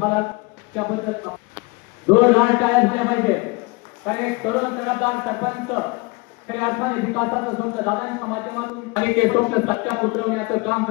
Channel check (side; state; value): right; quieter; 26.6 dB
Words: त्याबद्दल जोरदार टाळ्या झाल्या पाहिजे, कारण एक तरुण तडफदार सरपंच खऱ्या अर्थाने विकासाचं स्वप्न दादांच्या माध्यमातून आणि ते स्वप्न सत्यात उतरवण्याचं काम